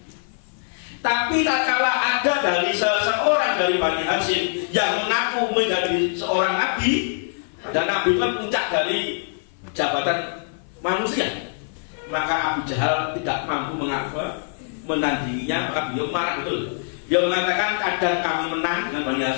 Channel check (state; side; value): silent; right; 56 dB below the other